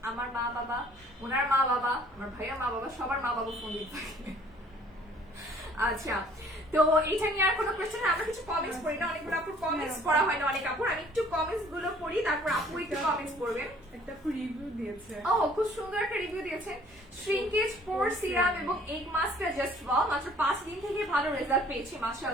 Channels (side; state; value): both; normal; correlation 0.56